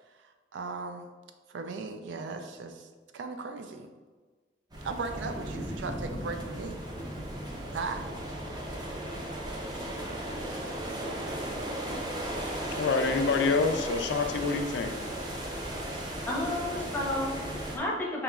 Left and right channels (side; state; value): both; normal; correlation 0.21